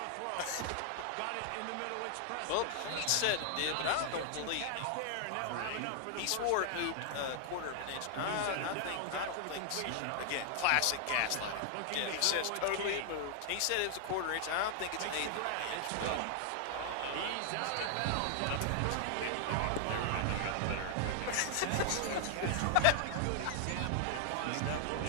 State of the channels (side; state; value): both; different; correlation 0.00